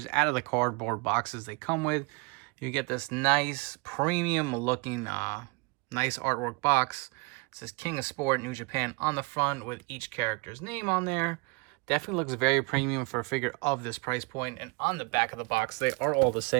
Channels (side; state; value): left; quieter; 29.0 dB